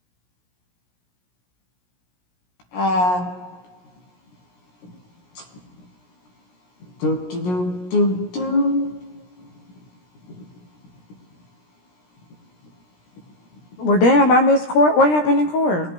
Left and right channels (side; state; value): right; late; 17 ms